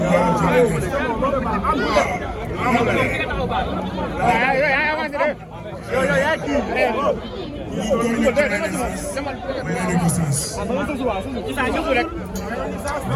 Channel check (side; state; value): both; identical; correlation 1.00